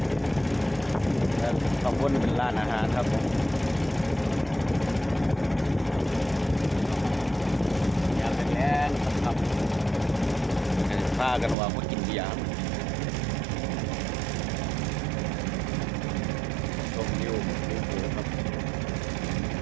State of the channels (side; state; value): left; drops out; at 11.6 s